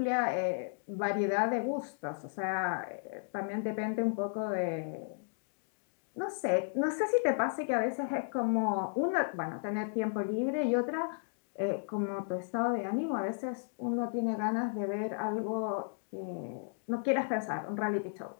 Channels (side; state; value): right; silent; digital silence